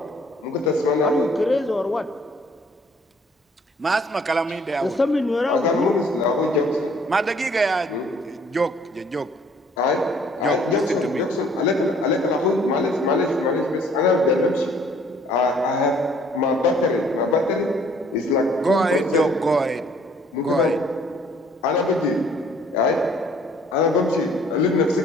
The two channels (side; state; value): both; normal; correlation 0.59